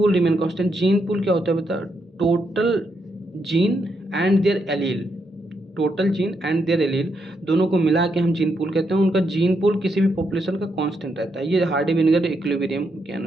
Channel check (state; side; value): normal; both; correlation 0.80